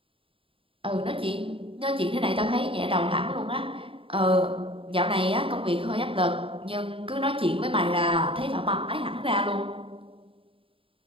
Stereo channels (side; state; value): left; late; 0.26 ms